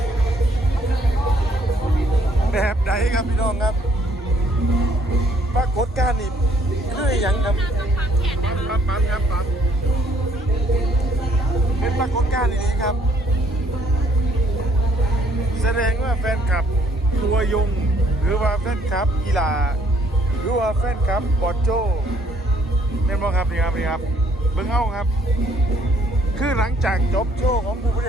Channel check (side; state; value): both; normal; correlation 0.65